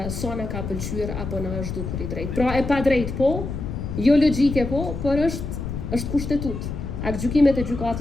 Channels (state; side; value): noise; left; rumble, 5 dB below the sound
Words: sa na ka pëlqyer apo na është dukur i drejtë. Pra e pa drejt po, jo logjike po, por është kushtetut. Aktgjykimet e